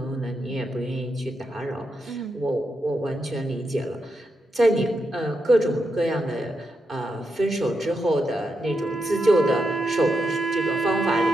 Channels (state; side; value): normal; both; correlation 0.84